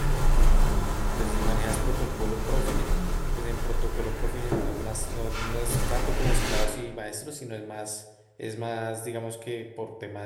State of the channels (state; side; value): identical; both; correlation 1.00